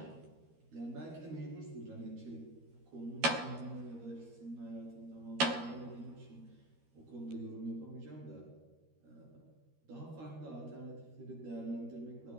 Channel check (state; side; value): late; left; 13 ms